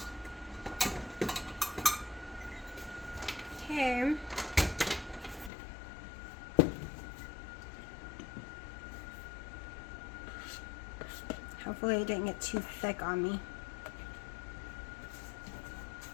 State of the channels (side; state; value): right; drops out; at 5.5 s